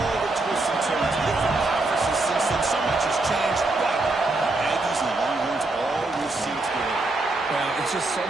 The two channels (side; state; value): left; quieter; 3.0 dB